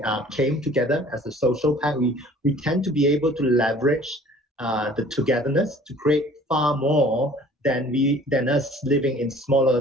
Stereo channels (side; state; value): both; normal; correlation 0.50